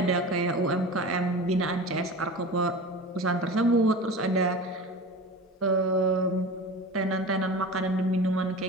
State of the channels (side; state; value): both; normal; correlation 0.33